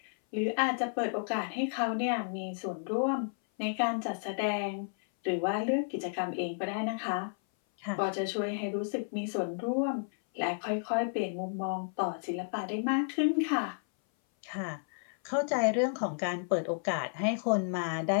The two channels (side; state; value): right; silent; 56 dB below the other